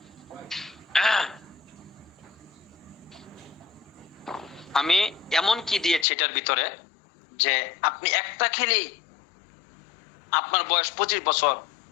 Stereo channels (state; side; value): drops out; right; at 6.1 s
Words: আমি এমন কি দিয়েছি এটার ভিতরে যে আপনি একটা খেলেই আপনার বয়স 25 বছর,